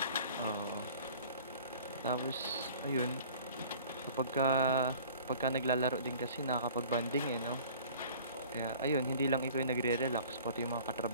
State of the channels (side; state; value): both; inverted; correlation -0.48